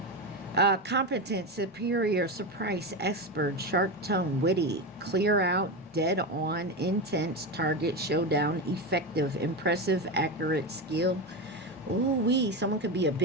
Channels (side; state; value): both; normal; correlation 0.17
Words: Competent, superior, surprise, expert, sharp tongue, witty, clear out, dead on, intense, target, showdown, effective, impressive, accurate, skill. Ooh-wee, someone could be a